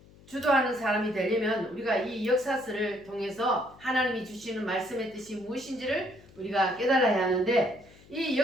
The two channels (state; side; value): noise; left; hum, 24 dB below the sound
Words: 주도하는 사람이 되려면 우리가 이 역사서를 통해서 하나님이 주시는 말씀의 뜻이 무엇인지를 우리가 깨달아야 하는데, 이